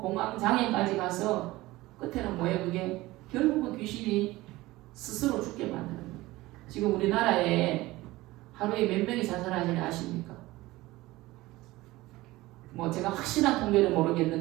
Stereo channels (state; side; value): quieter; left; 18.9 dB